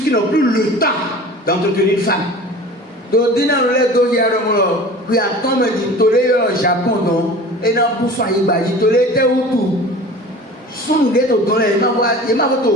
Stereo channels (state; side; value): normal; both; correlation 0.39